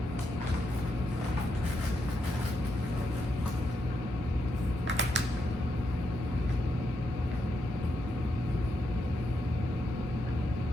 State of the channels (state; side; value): normal; both; correlation 0.82